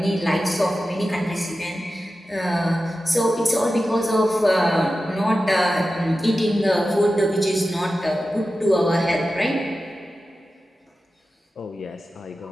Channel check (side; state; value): both; normal; correlation 0.93